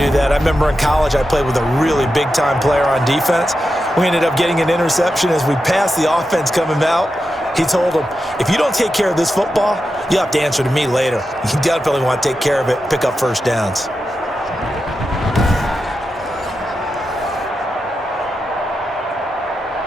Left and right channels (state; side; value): normal; both; correlation 0.89